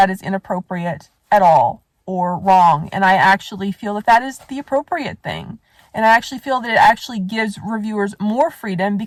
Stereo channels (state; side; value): identical; both; correlation 1.00